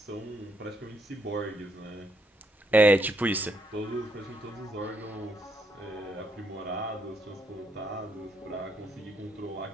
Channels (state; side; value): normal; both; correlation 0.75